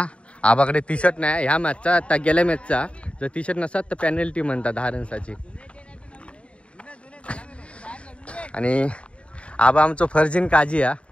आबाकडे टी शर्ट नाही ह्या मॅचचा. आता गेल्या मॅचचा जर टी शर्ट नसतात तर पेनल्टी म्हणतात 10 रन्साची. आणि आबा आमचं फर्जिन काजी हा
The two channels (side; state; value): right; late; 0.061 ms